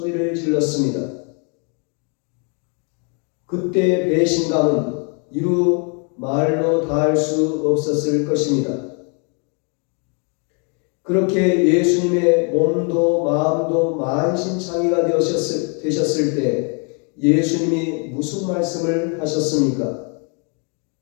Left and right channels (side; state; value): right; quieter; 38.2 dB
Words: 질렀습니다. 그때 배신감은 이루 말로 다할 수 없었을 것입니다. 그렇게 예수님의 몸도 마음도 만신창이가 되셨을 때 예수님이 무슨 말씀을 하셨습니까?